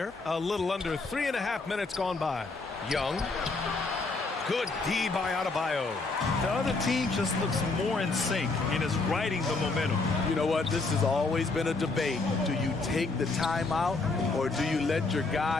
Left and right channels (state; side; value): quieter; right; 3.7 dB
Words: A little under 3.5 minutes gone by. Young. Good D by Adebayo. The other team just looks more in sync and is riding the momentum. You know what? This has always been a debate. Do you take the timeout or do you let your